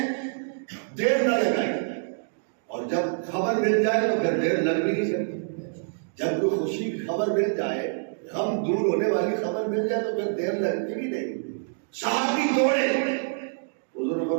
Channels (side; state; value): left; silent; digital silence